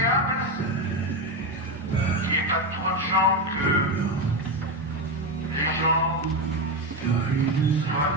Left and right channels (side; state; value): both; normal; correlation 0.12